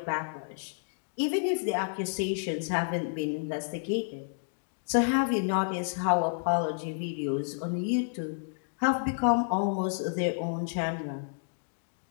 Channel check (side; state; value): right; silent; digital silence